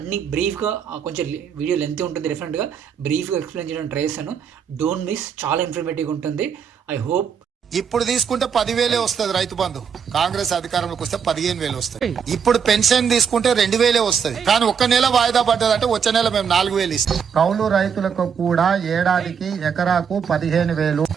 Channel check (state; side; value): quieter; left; 7.1 dB